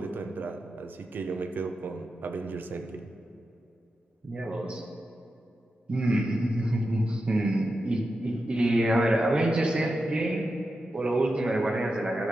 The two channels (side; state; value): both; normal; correlation 0.90